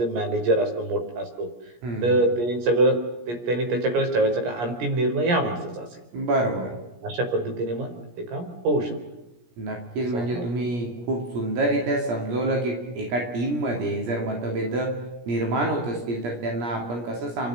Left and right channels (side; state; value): left; late; 17 ms